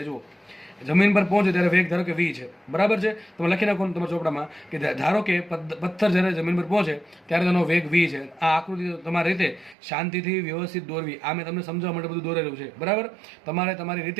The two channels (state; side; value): drops out; left; at 9.8 s